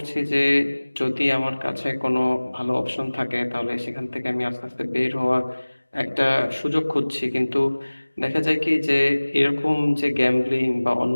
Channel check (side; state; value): both; inverted; correlation -1.00